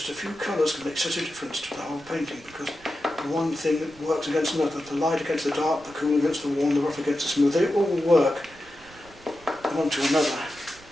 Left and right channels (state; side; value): noise; right; rumble, 24 dB below the sound